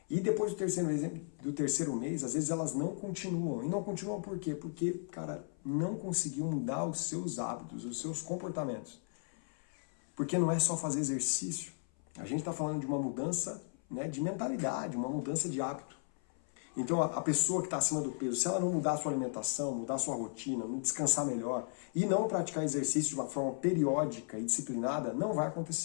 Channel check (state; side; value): silent; right; 54 dB below the other